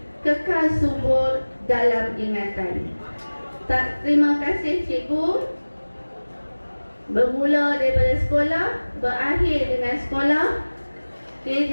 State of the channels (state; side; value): inverted; both; correlation -1.00